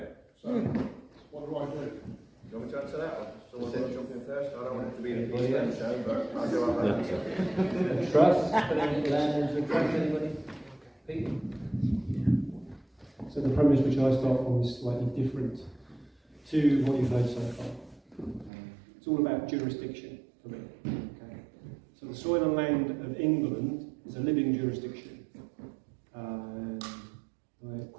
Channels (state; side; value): drops out; left; at 18.5 s